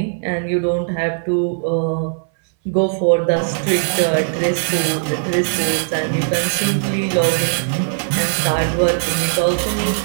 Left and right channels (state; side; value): silent; left; 62 dB below the other